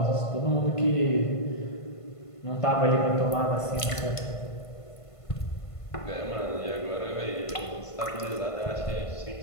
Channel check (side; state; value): right; late; 1.5 ms